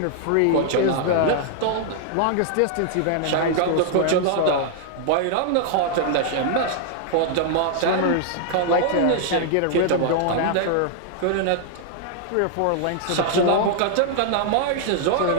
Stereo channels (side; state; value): both; different; correlation 0.00